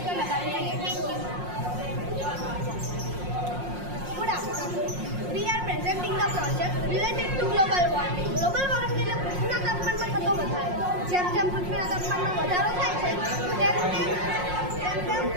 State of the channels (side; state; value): left; late; 5.6 ms